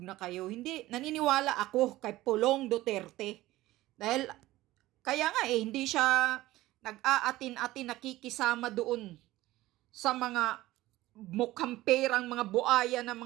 na kayo. Hindi, naniniwala ako kay Pulong Duterte. Dahil, kaya nga hindi siya nag-aatin-atin nakikisama doon sa mga mukhang perang mga buaya ng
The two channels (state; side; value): quieter; left; 17.0 dB